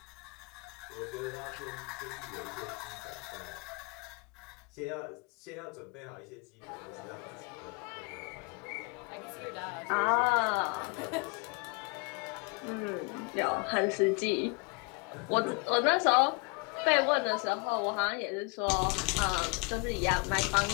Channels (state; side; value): quieter; right; 30.8 dB